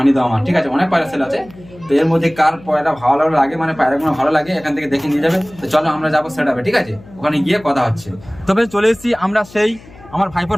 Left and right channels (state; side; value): noise; left; hum, 22 dB below the sound